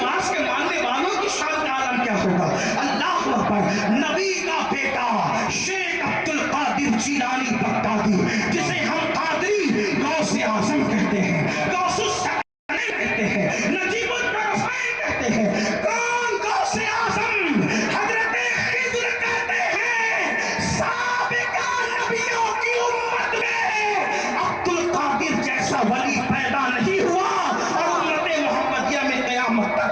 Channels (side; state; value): both; identical; correlation 1.00